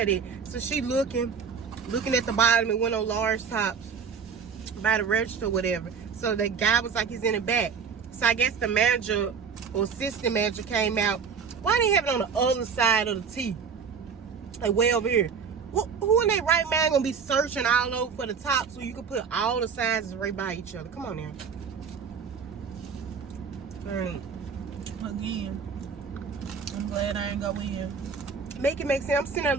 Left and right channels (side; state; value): left; quieter; 6.2 dB